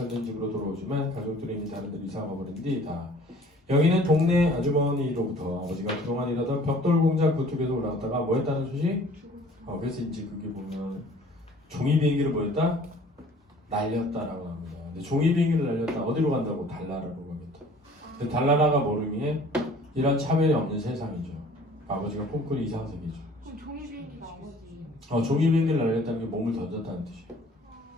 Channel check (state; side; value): normal; both; correlation 0.52